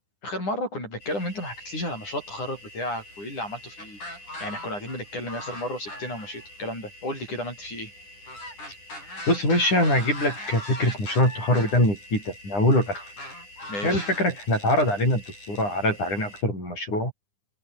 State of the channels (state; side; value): late; right; 9.9 ms